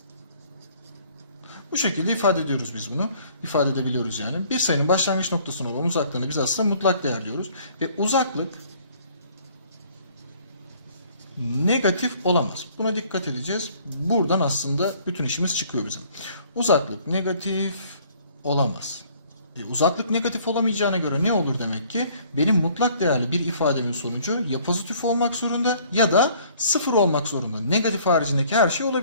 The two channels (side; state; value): both; inverted; correlation -0.58